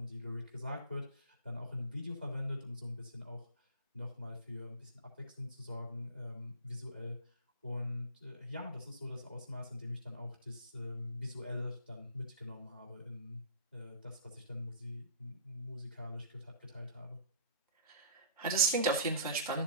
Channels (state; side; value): inverted; both; correlation -0.40